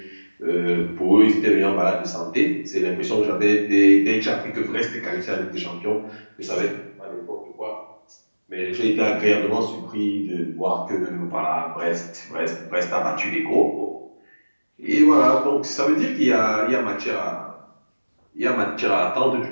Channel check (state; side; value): inverted; both; correlation -1.00